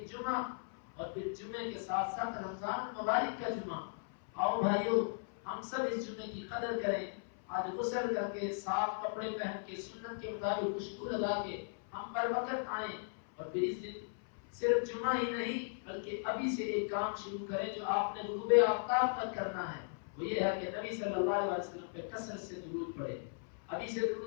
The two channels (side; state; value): right; silent; 53 dB below the other